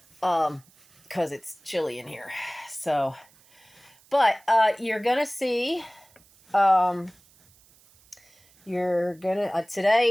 Because it's chilly in here. So, but you're gonna see,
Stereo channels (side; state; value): right; noise; hiss, 30 dB below the sound